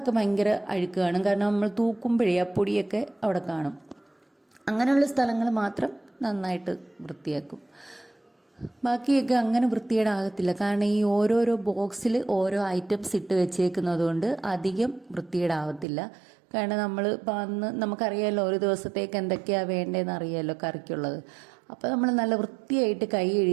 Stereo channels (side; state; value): left; drops out; at 15.9 s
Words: ഭയങ്കര അഴുക്ക് കാണും. കാരണം നമ്മൾ തൂക്കുമ്പോഴേ ആ പൊടിയൊക്കെ അവിടെ കാണും. അങ്ങനെയുള്ള സ്ഥലങ്ങൾ മാത്രം നന്നായിട്ട് വൃത്തിയാക്കും. ബാക്കിയൊക്കെ അങ്ങനെ വൃത്തികേടാകത്തില്ല. കാരണം ഈ ഓരോരോ ബോക്സിൽ ഓരോ ഐറ്റംസ് ഇട്ട് വെച്ചേക്കുന്നത് കൊണ്ട് അധികം വൃത്തികേടാവത്തില്ല. കാരണം നമ്മൾ ഇപ്പം അന്ന് നമുക്കറിയാമല്ലോ ഒരു ദിവസത്തേക്ക് എന്തൊക്കെയാണ് വേണ്ടതെന്ന് അറിയാമല്ലോ കറിക്കുള്ളത്. അപ്പോൾ നമ്മൾ നല്ല വൃത്തിയായിട്ട് കൈ